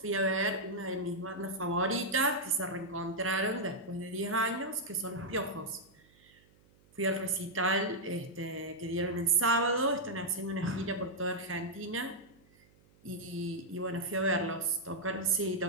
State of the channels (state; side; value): noise; right; hum, 30 dB below the sound